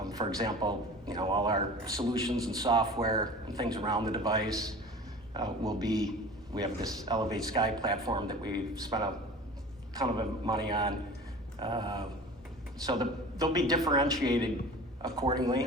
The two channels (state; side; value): normal; both; correlation 0.39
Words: For example, all our solutions and software and things around the device we have this Elevate Sky platform that we spent a ton of money on. So they'll be differentiated